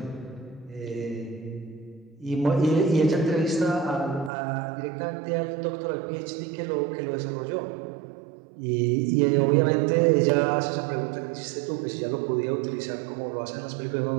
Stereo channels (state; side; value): drops out; left; at 4.3 s